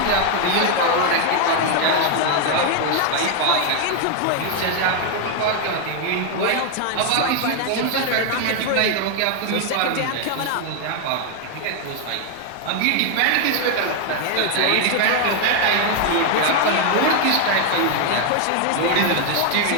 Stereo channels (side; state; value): both; different; correlation 0.01